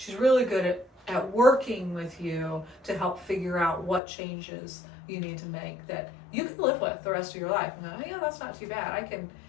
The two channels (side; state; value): right; drops out; at 4.0 s